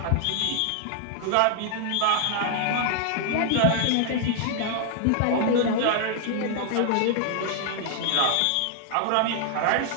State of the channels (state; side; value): different; both; correlation 0.00